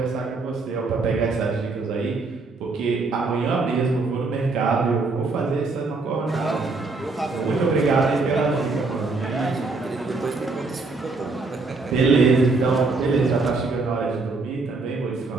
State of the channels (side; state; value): left; quieter; 3.8 dB